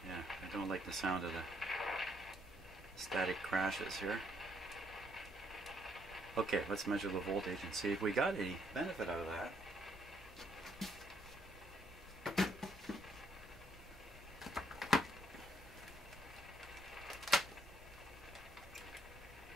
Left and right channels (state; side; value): normal; both; correlation 0.71